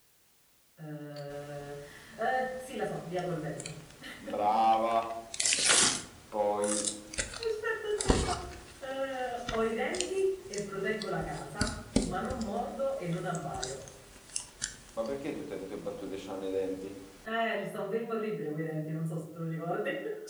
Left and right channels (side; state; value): both; identical; correlation 1.00